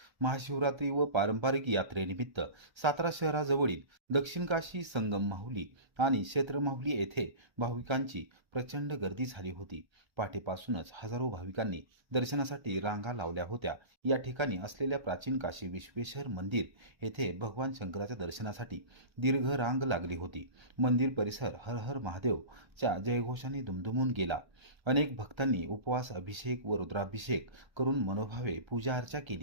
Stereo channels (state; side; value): late; left; 1.3 ms